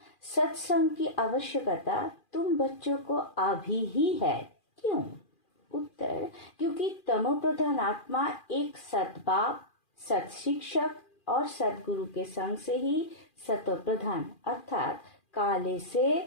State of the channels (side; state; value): right; late; 2.4 ms